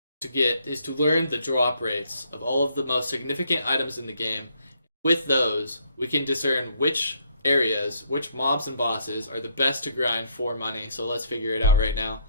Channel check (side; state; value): both; inverted; correlation -0.68